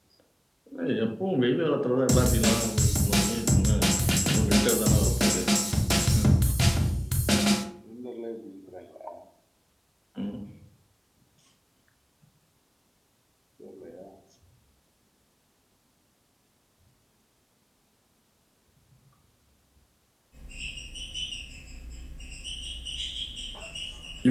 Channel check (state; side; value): identical; both; correlation 1.00